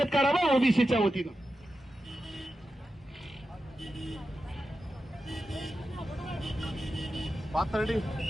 करावं ओबीसीच्या वतीनं. पाथर्डी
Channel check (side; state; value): both; normal; correlation 0.91